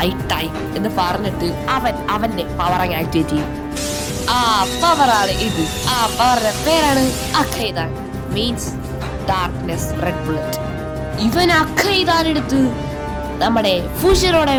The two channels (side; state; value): both; identical; correlation 1.00